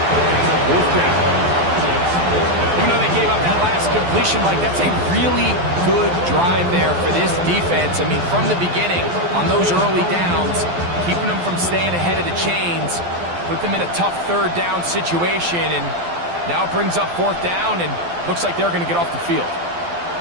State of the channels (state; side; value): late; left; 12 ms